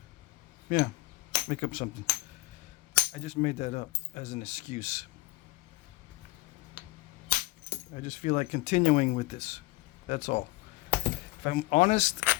Yeah, make up something. I just made that up as an excuse. I just feel like continuing with this. That's all. If I'm honest,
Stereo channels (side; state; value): right; quieter; 20.6 dB